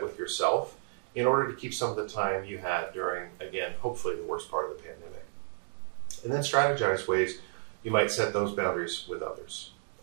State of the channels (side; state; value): left; silent; digital silence